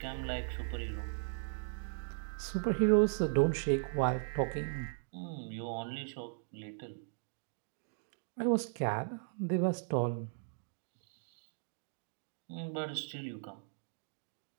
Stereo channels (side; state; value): left; silent; digital silence